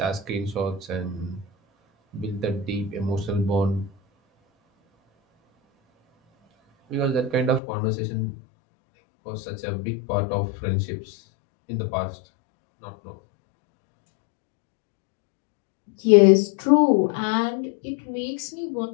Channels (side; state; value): right; drops out; at 7.6 s